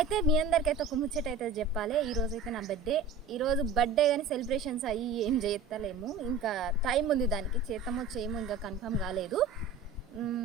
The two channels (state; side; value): quieter; left; 4.5 dB